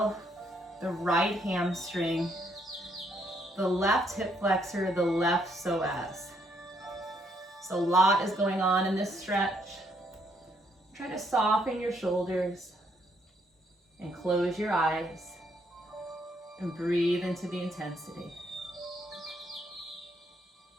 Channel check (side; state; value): both; normal; correlation 0.71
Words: the right hamstring, the left hip flexor, the left psoas. So a lot is going on in this stretch. Try to soften your shoulders and close your eyes and breathe into the intensity.